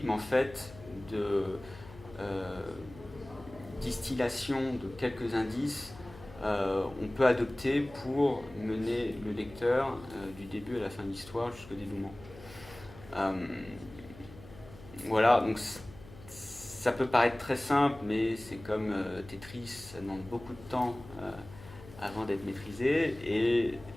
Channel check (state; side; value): noise; left; hum, 18 dB below the sound